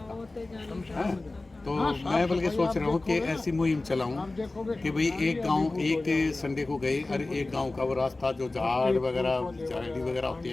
का है। तो मैं बल्कि सोच रहा हूँ कि ऐसी मुहिम चलाऊँ कि भाई एक गांव एक संडे को गए और एक गांव का वो रास्ता जो झाड़ वगैरह झाड़ी वगैरह होती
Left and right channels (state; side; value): quieter; right; 3.1 dB